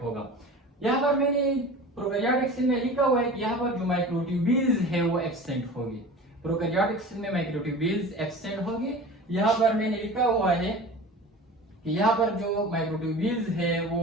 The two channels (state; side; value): normal; both; correlation 0.37